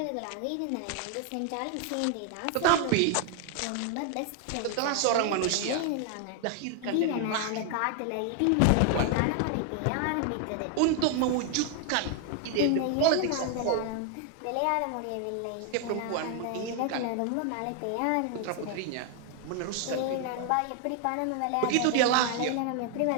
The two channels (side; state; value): both; different; correlation 0.00